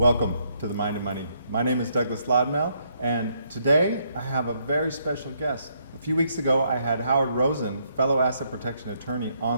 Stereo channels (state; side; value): inverted; both; correlation -0.74